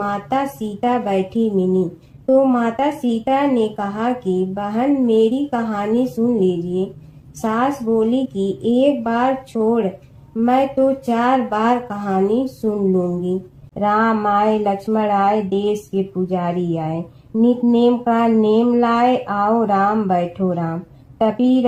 सीता बैठी मिली, तो माता सीता ने कहा कि बहन, मेरी कहानी सुन लीजिए। सास बोली कि एक बार छोड़, मैं तो 4 बार कहानी सुन लूंगी। राम आए, लक्ष्मण आए, देश के पुजारी आए, नित नेम का नेम लाए, आओ राम बैठो राम, तपी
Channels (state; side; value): identical; both; correlation 1.00